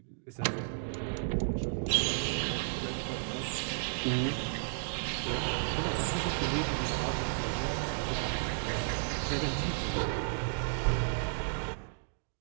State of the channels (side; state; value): left; silent; digital silence